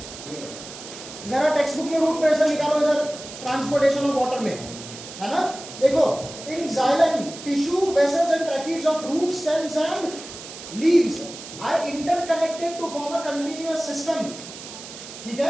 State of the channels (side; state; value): right; noise; hiss, 13 dB below the sound